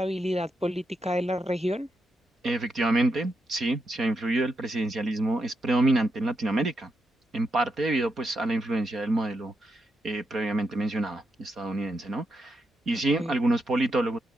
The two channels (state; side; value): normal; both; correlation 0.83